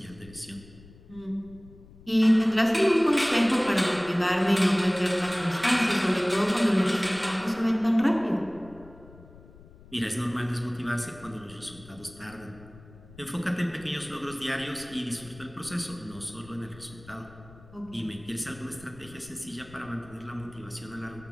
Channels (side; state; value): left; noise; rumble, 21 dB below the sound